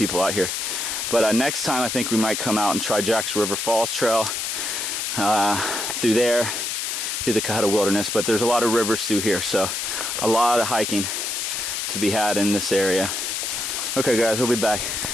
out here. But next time I think we might come out and try Jack's River Falls Trail through there, through the Cohutta Wilderness. But there's a lot of rivers through here, so a lot of hiking to be had in this area. Okay guys, we'll be back.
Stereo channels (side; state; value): left; noise; hiss, 2 dB below the sound